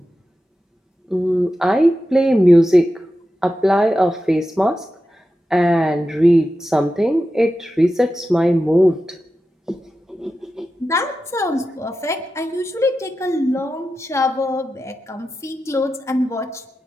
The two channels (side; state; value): both; normal; correlation 0.91